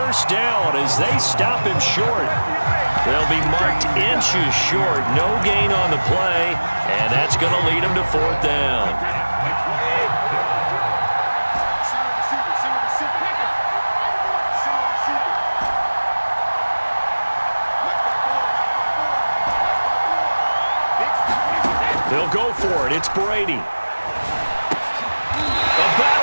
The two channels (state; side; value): inverted; both; correlation -1.00